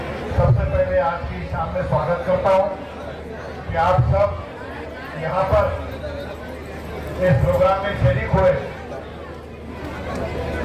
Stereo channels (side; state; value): both; identical; correlation 1.00